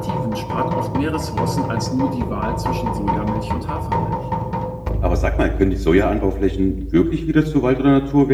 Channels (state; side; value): identical; both; correlation 1.00